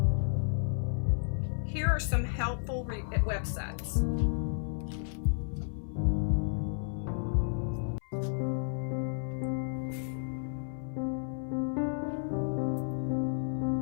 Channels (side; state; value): right; silent; 56 dB below the other